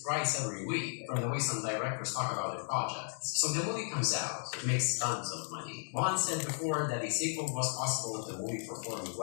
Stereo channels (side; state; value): right; silent; 55 dB below the other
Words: thrice every week, from the way some directors talk about their projects. So the movie comes out, it makes tons of money. Vaughn said before that a sequel was possible if the movie performed